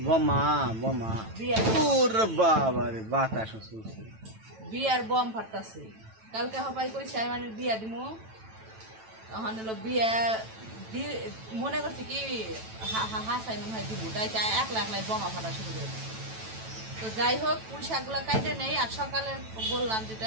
বিয়ার বম ফাটতেছে। কালকে হবাই কইছে আমি মানে বিয়া দিমু, তখন হলো বিয়া মনে করছি কি হাসাই মনে হয় দিব, তাই একলা একলাই বোমা ফাটা শুরু করে। তো যাই হোক, পুঁই শাকগুলা কাইটে নেই। আর সকালে বললাম যেটা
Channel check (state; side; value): late; left; 9.1 ms